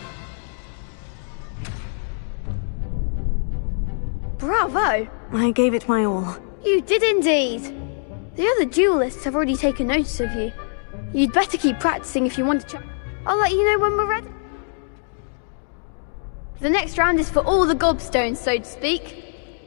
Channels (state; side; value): silent; right; digital silence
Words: Bravo! I gave it my all. You did indeed. The other duelists have already taken notice of you. You'd better keep practicing if you want to I'll let you know when we're ready. The next round is for all the gobstones, so to speak.